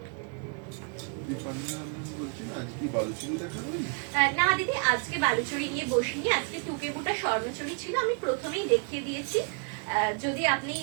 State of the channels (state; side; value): quieter; left; 37.6 dB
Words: না দিদি, আজকে বালুচরি নিয়ে বসিনি, আজকে টুকেবুটা স্বর্ণচুরি ছিল, আমি প্রথমেই দেখিয়ে দিয়েছি। যদি আপনি